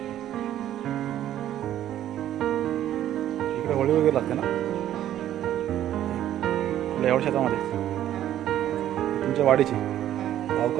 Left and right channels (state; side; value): quieter; left; 12.0 dB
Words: होळी वगैरे लागते ना एवढ्या शेतामध्ये. तुमच्या वाडीची